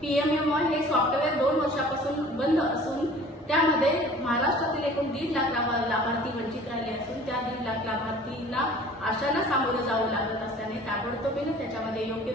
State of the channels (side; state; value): both; normal; correlation 0.48